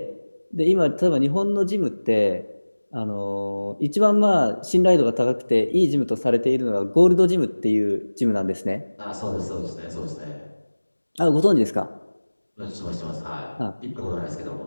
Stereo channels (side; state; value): both; inverted; correlation -1.00